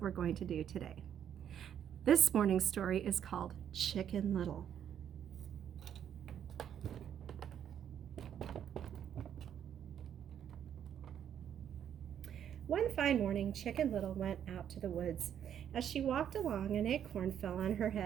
we're going to do today. This morning's story is called Chicken Little. One fine morning, Chicken Little went out to the woods. As she walked along, an acorn fell on her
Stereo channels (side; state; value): left; quieter; 9.3 dB